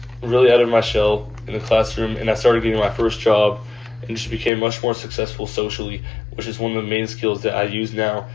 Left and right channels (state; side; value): drops out; right; at 4.5 s